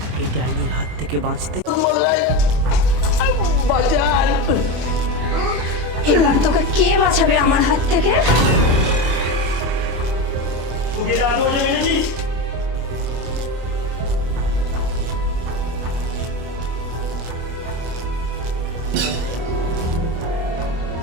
এই ডাইনির হাত থেকে বাঁচতে? এবার তোকে কে বাঁচাবে আমার হাত থেকে?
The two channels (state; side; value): late; left; 25 ms